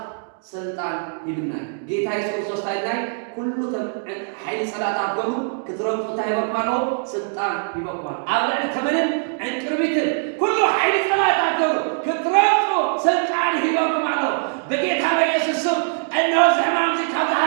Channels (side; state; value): left; silent; digital silence